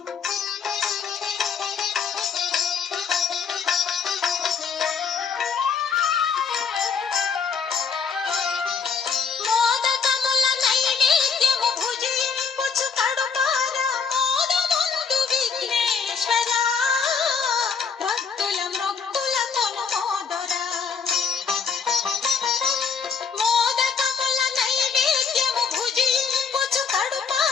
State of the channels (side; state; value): right; quieter; 6.1 dB